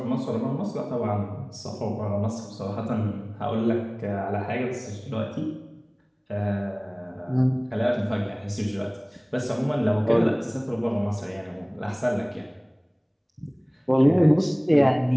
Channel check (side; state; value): both; identical; correlation 1.00